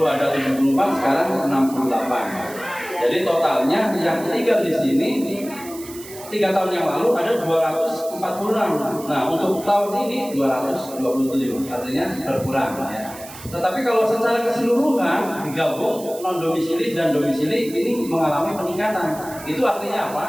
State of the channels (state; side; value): noise; right; hiss, 16 dB below the sound